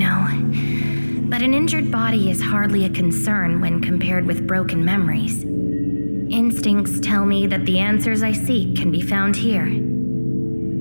But an injured body is hardly a concern when compared with broken memories. Instincts tell me that the answers I seek can be found here.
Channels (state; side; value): inverted; both; correlation -1.00